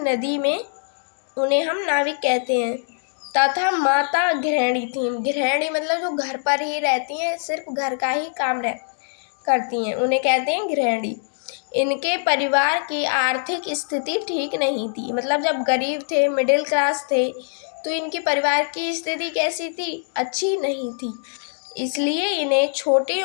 में उन्हें हम नाविक कहते हैं। तथा माता गृहिणी थी। गृहिणी मतलब जो घर पर ही रहती हैं, सिर्फ घर का ही काम करती हैं, उन्हें कहते हैं गृहिणी। इनके परिवार की आर्थिक स्थिति ठीक नहीं थी, मतलब जब गरीब थे, मिडिल क्लास थे, तो इनके परिवार की स्थिति कैसी थी? अच्छी नहीं थी। इसलिए इन्हें छोटी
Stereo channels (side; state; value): right; silent; digital silence